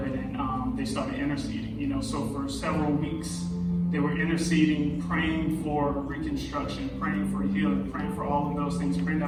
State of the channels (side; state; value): both; identical; correlation 1.00